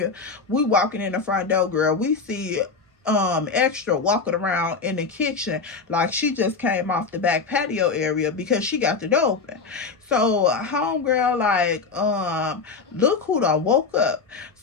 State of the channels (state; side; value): quieter; right; 4.7 dB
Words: We walking in the front door, girl. We see Extra walking around in the kitchen like she just came off the back patio area because she got the door open. So homegirl like, look who done woke up.